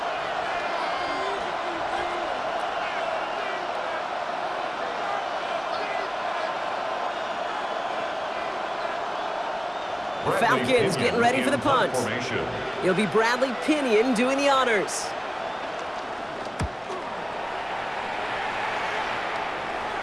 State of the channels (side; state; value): both; identical; correlation 1.00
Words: The Falcons getting ready for the punt. It'll be Bradley Pinion doing the honors.